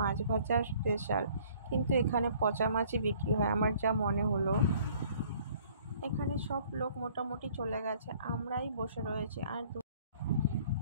ভাজা স্পেশাল, কিন্তু এখানে পচা মাছই বিক্রি হয় আমার যা মনে হলো। এখানে সব লোক মোটামুটি চলে গেছে, আমরাই বসে রয়েছি। আর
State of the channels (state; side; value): inverted; both; correlation -0.57